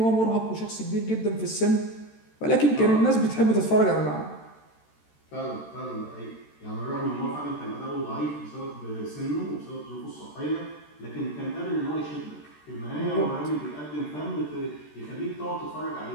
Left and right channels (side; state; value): right; late; 13 ms